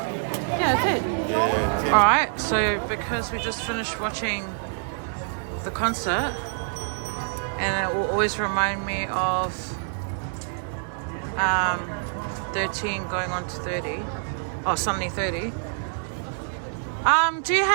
Yeah, it's it. Yeah, 10. Alright, so because we just finished watching the concert, and it will always remind me of 13 going on to 30, or suddenly 30. Do you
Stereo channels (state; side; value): silent; left; digital silence